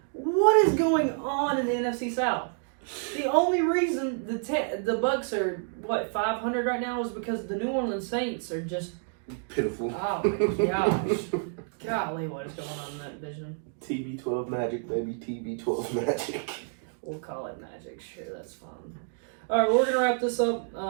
What is going on in the NFC South? The only reason the Bucs are 500 right now is because the New Orleans Saints are just pitiful. Oh my gosh! Golly, what is going on in that division? TB12 Magic, baby. TB12 Magic. We'll call it magic. Sure, that's fun. All right, we're gonna wrap this up.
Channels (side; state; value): left; silent; 59 dB below the other